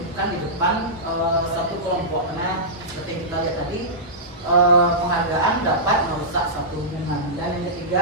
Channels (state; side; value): normal; both; correlation -0.15